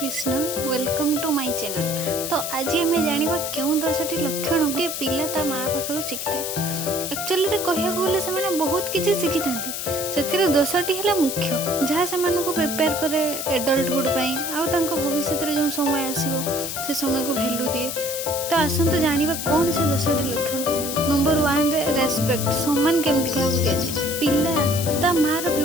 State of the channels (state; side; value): noise; left; hiss, 5 dB below the sound